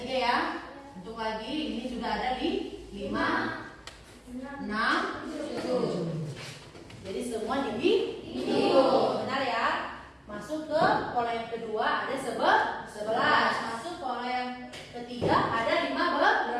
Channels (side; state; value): both; identical; correlation 1.00